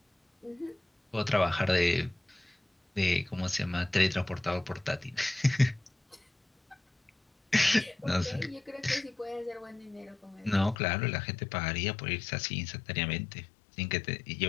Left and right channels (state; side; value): drops out; right; at 10.8 s